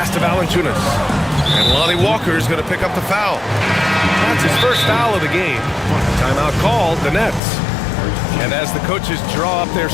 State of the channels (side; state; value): right; drops out; at 7.4 s